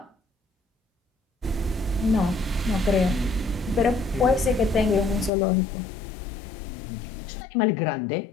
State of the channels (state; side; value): drops out; right; at 5.3 s